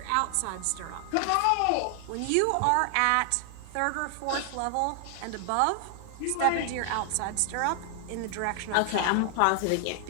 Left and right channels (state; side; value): different; both; correlation 0.00